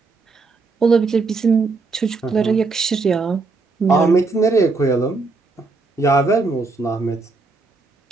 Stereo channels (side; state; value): left; quieter; 3.9 dB